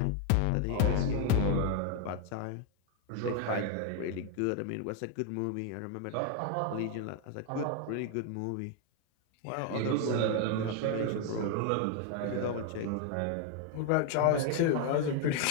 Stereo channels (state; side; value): different; both; correlation 0.00